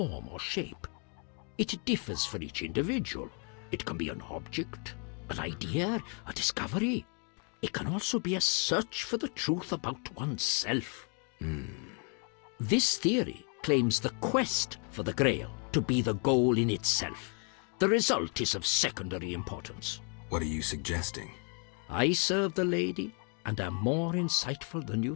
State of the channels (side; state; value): right; quieter; 38.8 dB